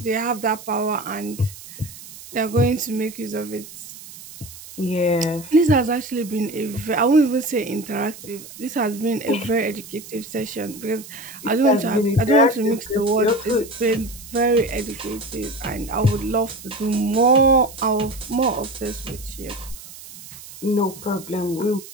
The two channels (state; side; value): noise; right; hiss, 16 dB below the sound